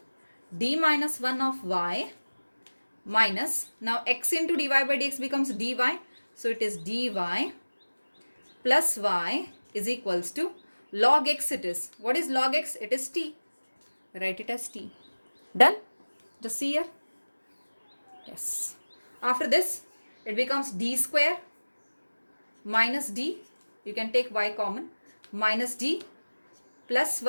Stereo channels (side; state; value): both; inverted; correlation -1.00